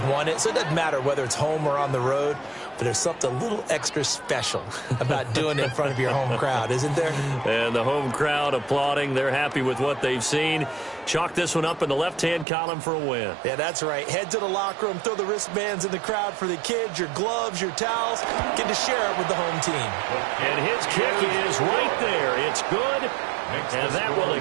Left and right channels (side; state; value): left; drops out; at 12.5 s